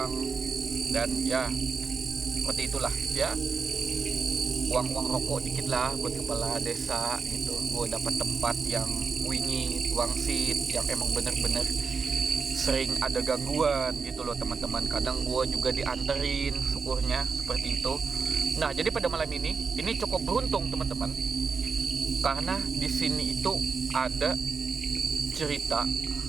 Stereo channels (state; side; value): quieter; left; 5.1 dB